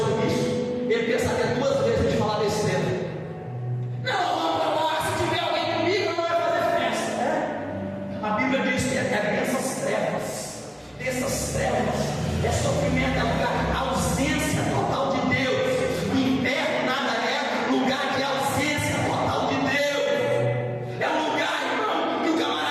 isso, ele pensaria duas vezes antes de falar besteira. Não, vamos para lá, se tiver alguém comigo, não vai fazer festa, né? A Bíblia diz que é dessas trevas, é sofrimento, é lugar, ausência total de Deus. O inferno nada é lugar de ausência total de Deus. É um lugar, irmão, que o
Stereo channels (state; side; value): identical; both; correlation 1.00